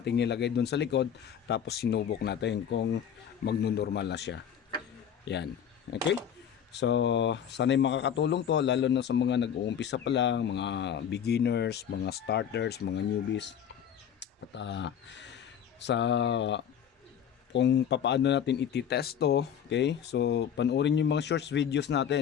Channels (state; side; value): quieter; right; 8.7 dB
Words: natin nilagay doon sa likod, tapos sinubok natin kung magno-normal na siya. Yan, okay. So, sana'y makakatulong to lalo na sa mga nag-uumpisa pa lang, mga beginners, mga starters, mga newbies. At sa kung papaano natin ititest to, okay? So, panoorin yung mga shorts videos